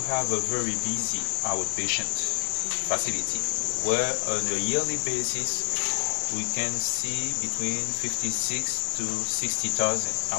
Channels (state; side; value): silent; right; digital silence